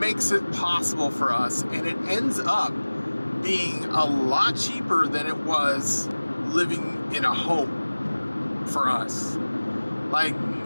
it possible for us, and it ends up being a lot cheaper than it was living in a home for us. Like,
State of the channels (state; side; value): inverted; both; correlation -1.00